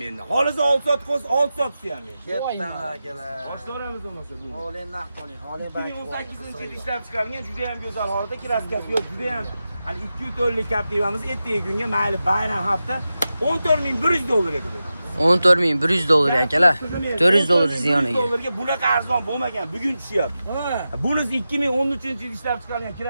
menda. Xolisi 6 soat qo'ysa 6 soatisi ham menda. Ketdan akalar. Boshlaramiz bo'lmasa bu. Oling naq qoling, oling bank. 2018-yilda ishlab chiqarilgan juda ham go'zal holatda kraskasi yo'q, juda ham hali 2 tonlik Captiva'miz ertaga kunga mayli bayram hafta 14100 dollarga qo'yamiz. 14100 dollar akalar. 400 dollar ziyoniga. Dollarga bunaqa arzon bo'lmagan, bugun tushyapti. Bunisi 2013-yilda ishlab chiqarilgan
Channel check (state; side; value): inverted; both; correlation -0.92